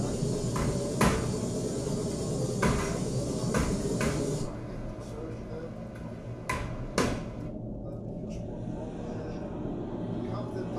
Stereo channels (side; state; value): both; identical; correlation 1.00